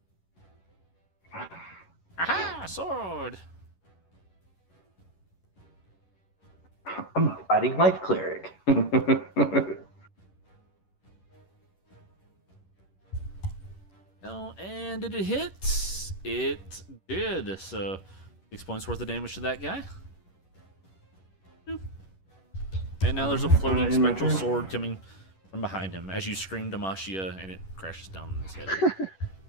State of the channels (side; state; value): right; late; 11 ms